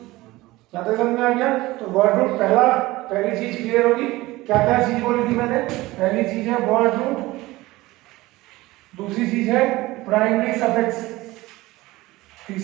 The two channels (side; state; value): left; quieter; 19.2 dB